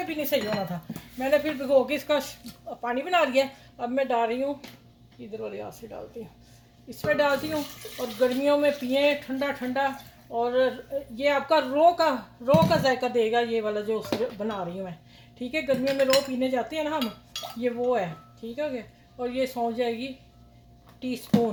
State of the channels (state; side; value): identical; both; correlation 1.00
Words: भी नहीं सही होना था। मैंने फिर भिगो के इसका पानी बना लिया। अब मैं डाल रही हूँ, इधर वाले हाथ से डालती हूँ, इसमें डालती हूँ। और गर्मियों में पिए ठंडा ठंडा। और ये आपका रो का जायका देगा, ये वाला जो बना रही हूँ मैं, ठीक है। गर्मियों में रो पीने जाते हैं ना हम, ये वो है, ठीक है। और ये सौंफ जाएगी